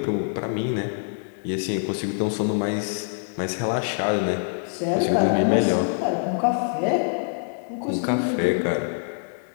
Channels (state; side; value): silent; right; digital silence